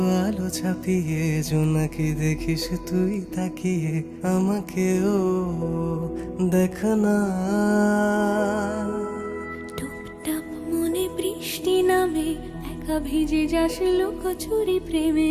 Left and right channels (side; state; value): both; identical; correlation 1.00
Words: আলো ছাপিয়ে জোনাকি দেখিস তুই তাকিয়ে আমাকেও দেখ না। টুপটাপ মনে বৃষ্টি নামে একা ভিজে যাস লুকোচুরি প্রেমে